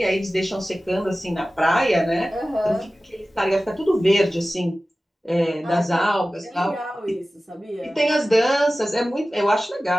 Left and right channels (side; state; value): both; normal; correlation 0.96